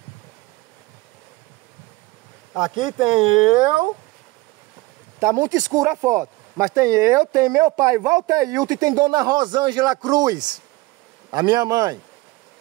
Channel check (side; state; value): left; quieter; 21.4 dB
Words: Aqui tem eu, tá muito escura a foto, mas tem eu, tem meu pai Walter Hilton e tem Dona Rosângela Cruz, a minha mãe.